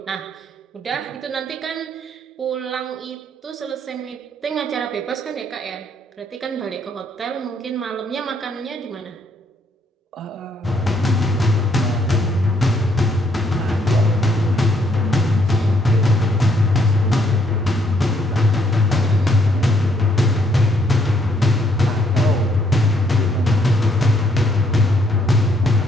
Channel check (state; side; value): normal; both; correlation 0.69